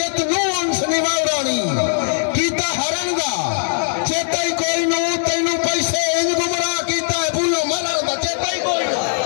नु उनस निवावरानी कीता हरन दा चेता ही कोई नु तैनू पैसे इंज गुमराह कीता है भूलो मरण दा चेता ही कोई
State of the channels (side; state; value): right; silent; digital silence